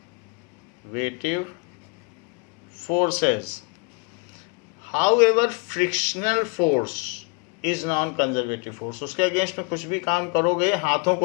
forces. However frictional force is non conservative force, उसके अगेंस्ट में कुछ भी काम करोगे, हाथों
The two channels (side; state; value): right; quieter; 34.3 dB